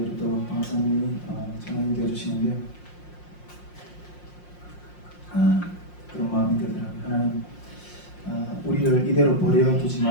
또 방사님이 전화를 되어주시는데 그런 마음이 들더라고요. 하나님 우리를 이대로 버려두지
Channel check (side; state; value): right; late; 5.6 ms